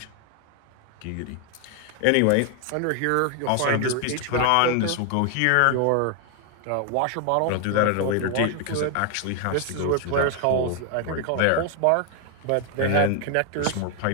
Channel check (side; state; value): both; different; correlation 0.01